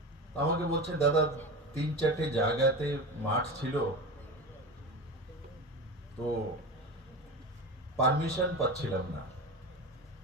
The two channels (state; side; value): normal; both; correlation 0.26